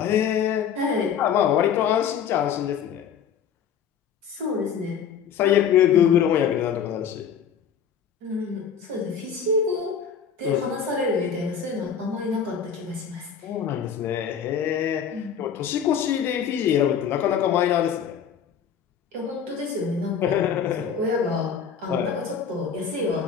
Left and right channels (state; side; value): quieter; right; 7.6 dB